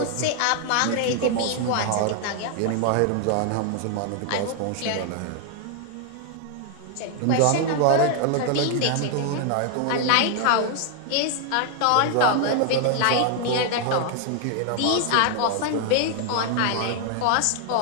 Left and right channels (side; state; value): both; different; correlation 0.00